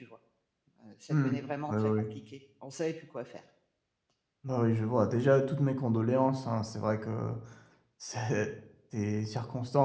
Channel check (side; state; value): both; identical; correlation 1.00